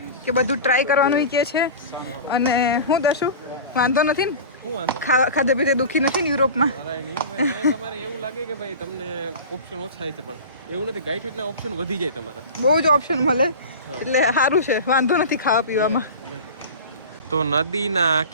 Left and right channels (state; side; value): inverted; both; correlation -0.33